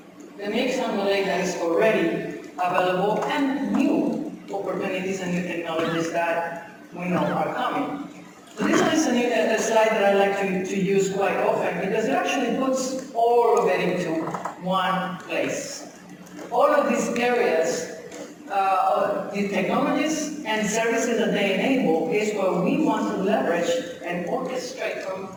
The mixed underlay that is already available and new opportunities and new technologies that we know are coming. So this one is a slide that I like to use quite often because it actually puts all of it into one place. All of these areas, the technologies and services that they enable is where we want to leverage and orchestrate from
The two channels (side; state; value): both; identical; correlation 1.00